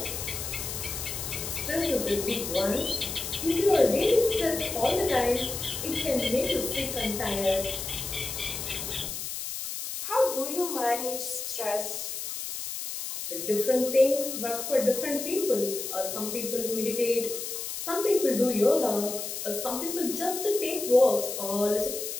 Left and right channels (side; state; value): left; noise; hiss, 6 dB below the sound